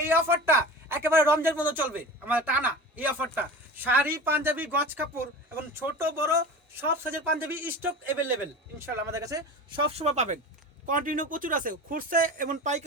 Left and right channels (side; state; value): both; normal; correlation 0.33